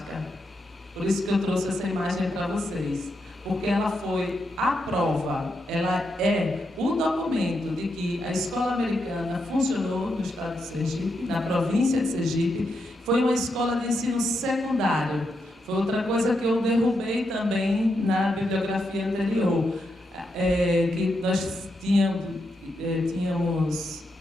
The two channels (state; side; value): normal; both; correlation 0.83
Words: Por isso que eu trouxe essa imagem para vocês. Porque ela foi a prova, ela é o documento de que a escola americana funcionou no estado de Sergipe, na província de Sergipe. Foi uma escola de ensino secundário. Foi outra coisa que eu derrubei também na bibliografia anterior. Que nós tínhamos